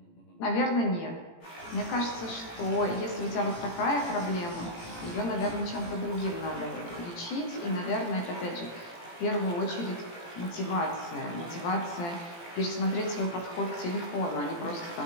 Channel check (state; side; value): late; right; 18 ms